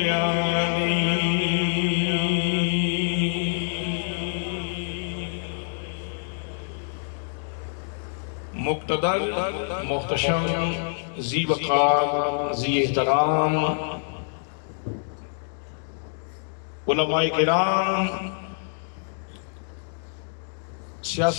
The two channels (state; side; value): silent; right; digital silence